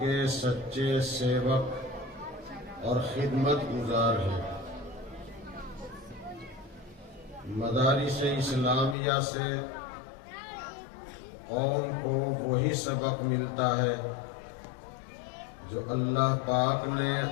کے سچے سیوک اور خدمت گزار ہیں۔ مدارس اسلامیہ سے قوم کو وہی سبق ملتا ہے جو اللہ پاک نے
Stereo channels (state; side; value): drops out; right; at 9.0 s